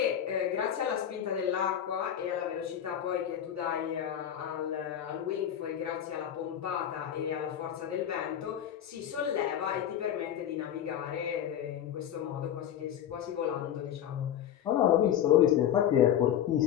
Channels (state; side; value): quieter; right; 10.2 dB